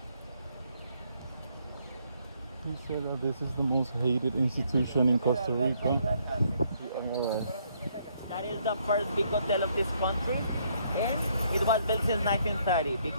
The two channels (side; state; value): both; inverted; correlation -0.70